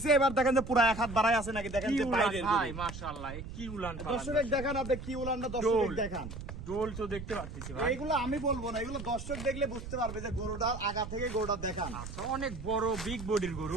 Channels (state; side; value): noise; right; rumble, 10 dB below the sound